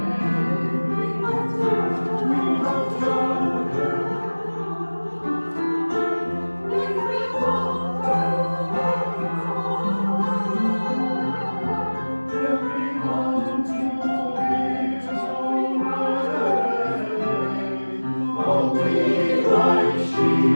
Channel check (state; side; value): inverted; both; correlation -1.00